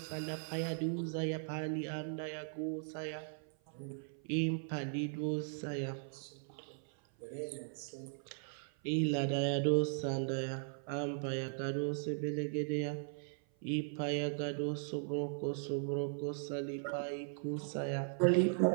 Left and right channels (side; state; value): left; silent; 52 dB below the other